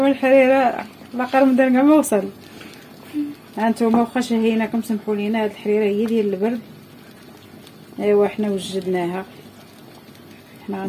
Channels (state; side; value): identical; both; correlation 1.00